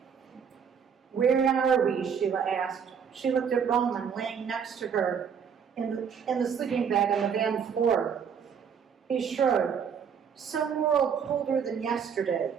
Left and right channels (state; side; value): quieter; left; 7.1 dB